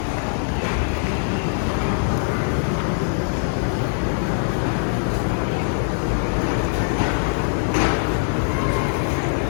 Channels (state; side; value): silent; right; 64 dB below the other